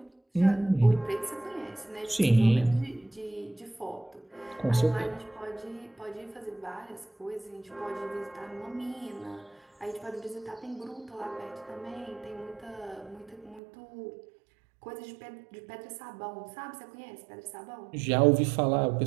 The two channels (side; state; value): left; drops out; at 13.6 s